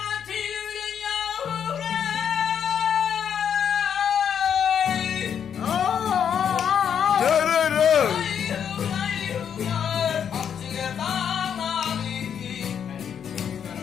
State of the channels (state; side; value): quieter; right; 8.2 dB